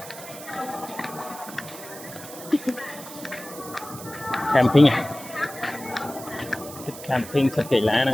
camping à thích camping thật kỳ lạ này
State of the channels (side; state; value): right; noise; hiss, 14 dB below the sound